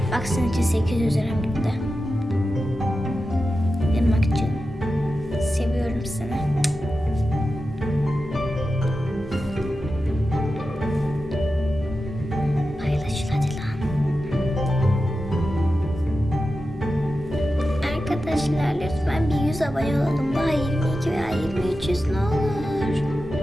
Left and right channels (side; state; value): both; normal; correlation 0.92